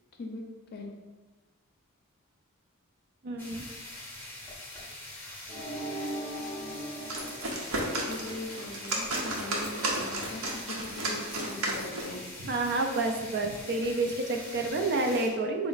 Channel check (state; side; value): normal; both; correlation 0.14